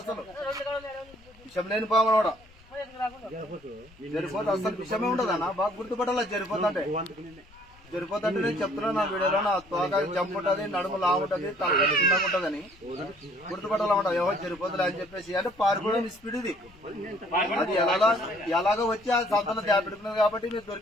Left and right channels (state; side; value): noise; left; rumble, 26 dB below the sound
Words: విషం లేని పాము కూడా జరిపోతే అసలు విషయమే ఉండదన్నా బాగా గుర్తుపట్టాల జరిపోతుంటే నేను చెప్తున్నా నా వీడియోలో నా తోక జంప్ ఉంటది నడుము లా ఉంటది తల చిన్నగా ఉంటదని గుర్తుపట్టాలన్నమాట ఎవరు జరిపోతుంది అని చెప్పేసి అంటే పారిపోవడం స్పీడ్ ఇది అది ఎలాగో వచ్చి ఆ సంతలో దాపెడుతున్నది కాబట్టి మీరు